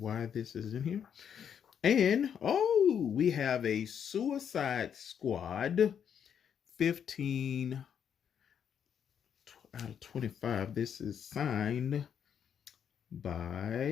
this is in here. And we have a Suicide Squad 15 out of 25. This is signed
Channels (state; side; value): quieter; right; 8.2 dB